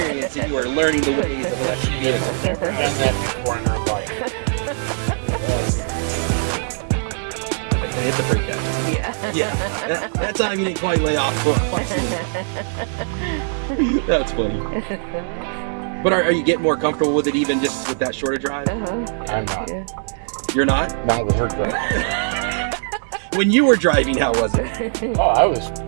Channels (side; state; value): left; silent; digital silence